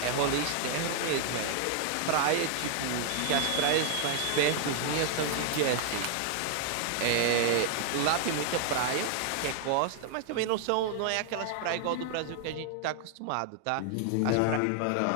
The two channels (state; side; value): different; both; correlation 0.00